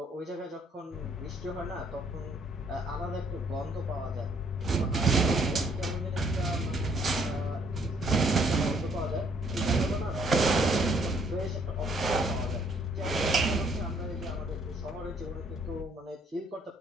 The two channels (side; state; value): both; normal; correlation 0.65